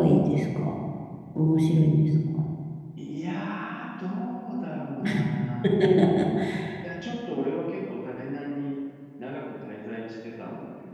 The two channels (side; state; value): both; identical; correlation 1.00